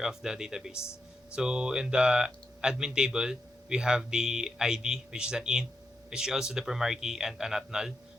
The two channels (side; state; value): both; normal; correlation 0.84